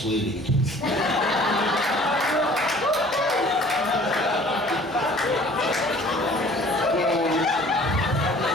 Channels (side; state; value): both; normal; correlation 0.51